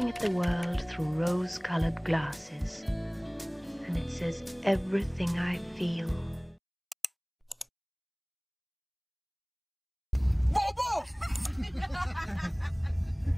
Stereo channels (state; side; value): identical; both; correlation 1.00